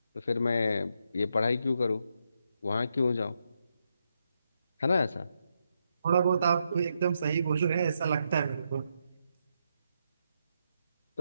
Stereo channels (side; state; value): both; inverted; correlation -0.81